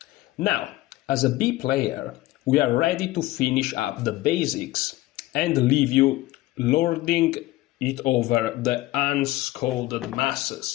Now, as a B player, we are ready to finish up the basics and leave you lording it over the unscolded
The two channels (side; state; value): right; quieter; 17.5 dB